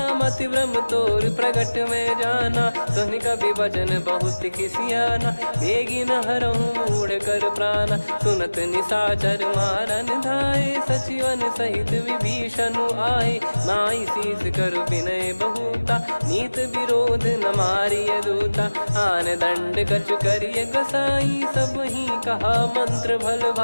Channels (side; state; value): both; inverted; correlation -1.00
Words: मति भ्रम तोर प्रगट में जाना। सुनि कपि वचन बहुत खिसियाना, बेगी न हरहु मूढ़ कर प्राणा। सुनत निशाचर मारन धाये, सचिवन सहित विभीषण आए। नाई शीस कर विनय बहुता, नीत विरोध न मारिय दूता। आन दंड कछु करिय गोसाई, सब ही कहा मंत्र भल